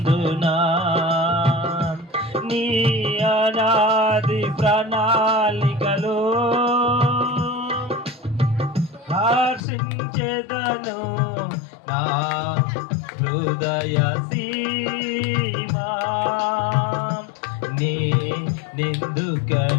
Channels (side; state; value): right; drops out; at 9.6 s